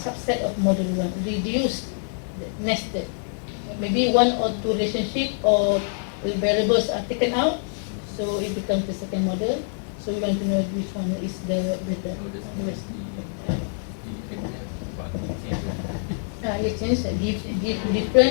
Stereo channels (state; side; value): silent; right; 55 dB below the other